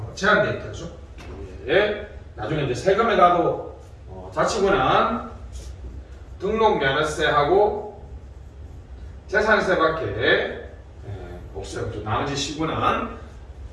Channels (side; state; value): both; identical; correlation 1.00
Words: 제한되어 있다, 그죠? 예. 나중에 이제 세금에 가도 자치구는 등록 면허세하고 재산세밖에 없어요. 그죠? 나머지 시군은